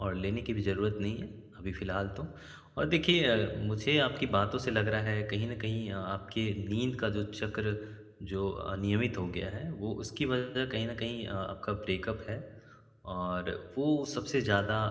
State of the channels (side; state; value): both; identical; correlation 1.00